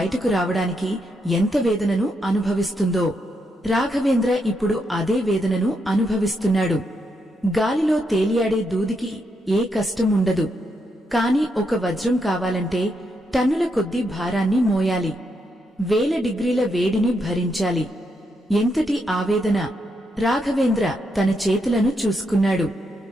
రావడానికి ఎంత వేదనను అనుభవిస్తుందో, రాఘవేంద్ర ఇప్పుడు అదే వేదనను అనుభవిస్తున్నాడు. గాలిలో తేలియాడే దూదికి ఏ కష్టం ఉండదు. కాని ఒక వజ్రం కావాలంటే టన్నుల కొద్దీ భారాన్ని మోయాలి. 1000 డిగ్రీల వేడిని భరించాలి. ఎంతటి ఆవేదన! రాఘవేంద్ర తన చేతులను చూసుకున్నాడు.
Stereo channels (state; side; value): normal; both; correlation 0.80